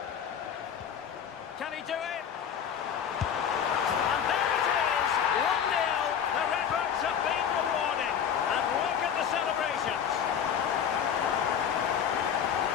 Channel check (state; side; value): quieter; right; 8.3 dB